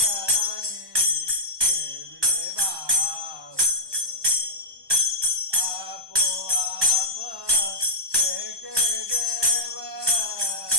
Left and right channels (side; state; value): left; late; 1.2 ms